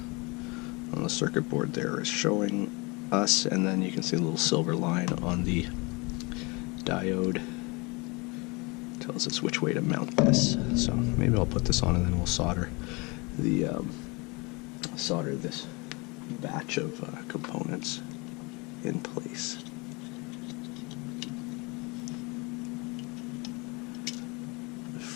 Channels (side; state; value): right; quieter; 27.4 dB